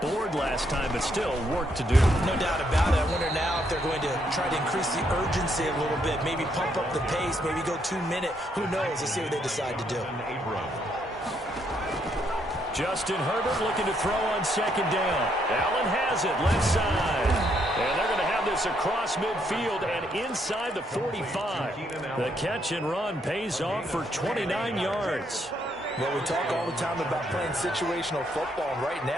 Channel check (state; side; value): normal; both; correlation 0.74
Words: last time, but still work to do. No doubt about it. I wonder now if they're going to try to increase the urgency a little bit, maybe pump up the pace, maybe go 2-minute. Who knows? Let's see what they decide to do. Justin Herbert looking to throw on second down. Allen has it, left side. And they're going to have this across midfield and inside the 45. The catch and run pays off for 29 yards. Well, we talk all the time about playing situational football, and right